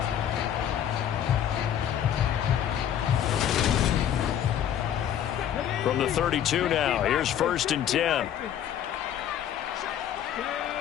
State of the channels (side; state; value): right; quieter; 10.1 dB